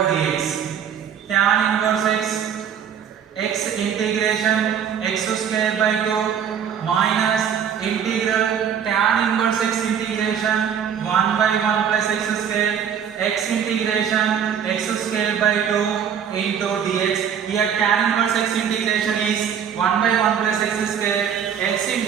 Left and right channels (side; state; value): left; quieter; 8.2 dB